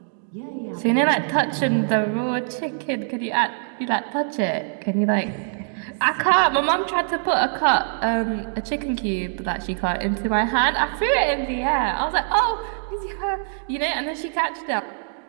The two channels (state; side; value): silent; left; digital silence